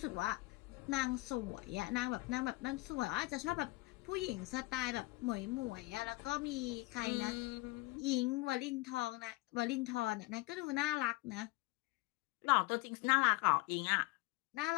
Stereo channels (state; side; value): quieter; right; 22.6 dB